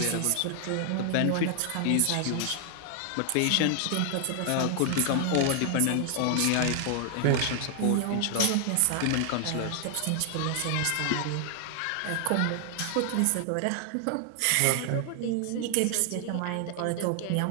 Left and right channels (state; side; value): different; both; correlation 0.00